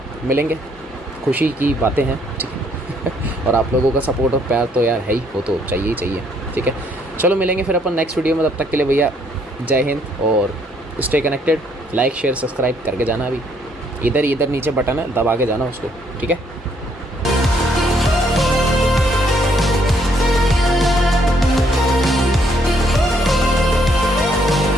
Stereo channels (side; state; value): both; normal; correlation 0.68